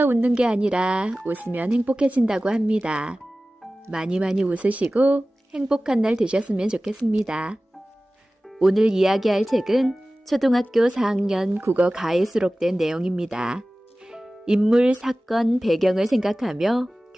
웃는 게 아니라 웃으면 행복해진다고 합니다. 많이 웃으시고 행복한 날 되셨으면 좋겠습니다. 오늘 이야기할 책은 초등학교 4학년 국어 가에 수록된 내용입니다. 인물, 사건, 배경을 생각하며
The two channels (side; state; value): both; normal; correlation 0.97